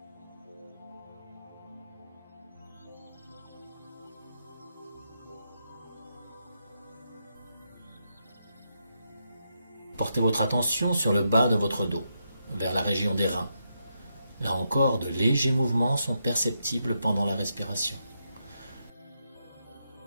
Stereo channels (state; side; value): inverted; both; correlation -0.82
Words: Portez votre attention sur le bas de votre dos, vers la région des reins. Là encore, de légers mouvements sont perceptibles pendant la respiration.